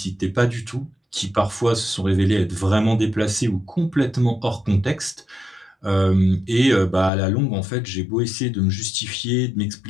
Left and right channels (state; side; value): drops out; right; at 7.1 s